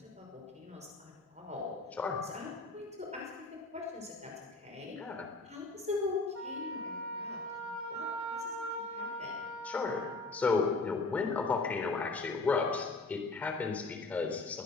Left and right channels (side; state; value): right; quieter; 3.6 dB